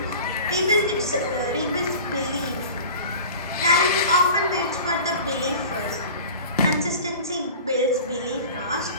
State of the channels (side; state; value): both; inverted; correlation -0.39